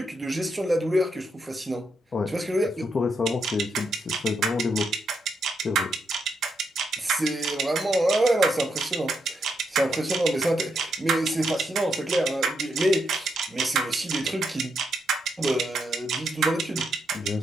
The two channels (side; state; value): both; normal; correlation 0.80